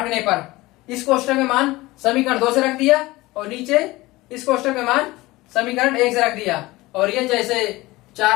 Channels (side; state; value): right; quieter; 19.9 dB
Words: पर इस कोष्टक में मान समीकरण 2 से रख दिया और नीचे इस कोष्टक में मान समीकरण 1 से रख दिया, और ये जैसे